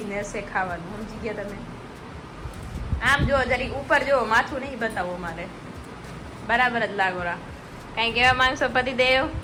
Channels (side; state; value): both; identical; correlation 1.00